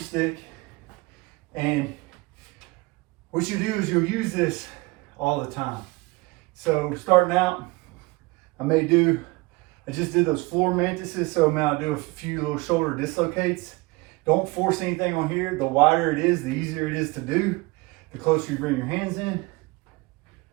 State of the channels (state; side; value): quieter; left; 23.8 dB